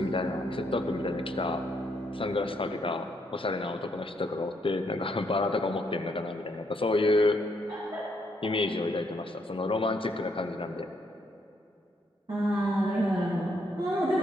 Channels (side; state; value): both; normal; correlation 0.74